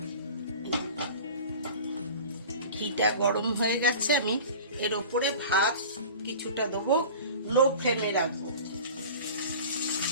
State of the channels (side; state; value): both; inverted; correlation -0.39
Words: ঘিটা গরম হয়ে গেছে, আমি এর উপরে ভাত কিছুটা দেবো, লো ফ্লেমে রাখবো।